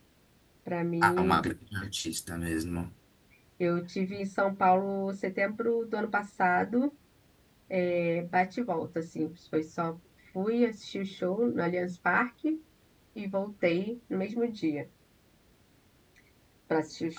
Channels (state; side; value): identical; both; correlation 1.00